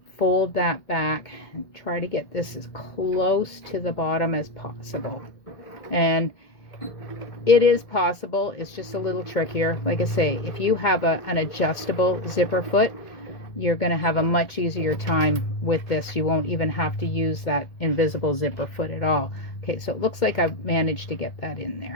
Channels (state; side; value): late; right; 2.2 ms